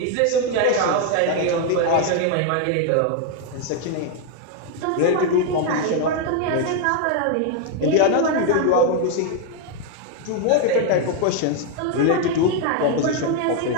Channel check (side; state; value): both; different; correlation 0.01